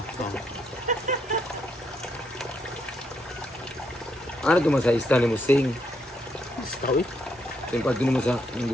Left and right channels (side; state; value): both; normal; correlation 0.76